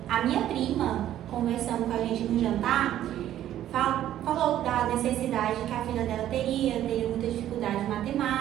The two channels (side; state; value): left; quieter; 12.1 dB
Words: a minha prima, conversando com a gente no jantar, falou da necessidade que a filha dela teria muita dificuldade em